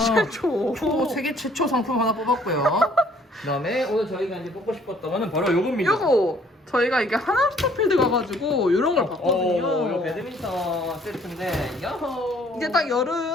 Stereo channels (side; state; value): both; normal; correlation 0.60